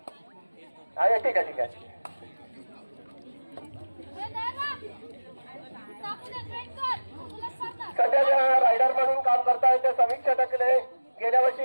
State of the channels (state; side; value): inverted; both; correlation -1.00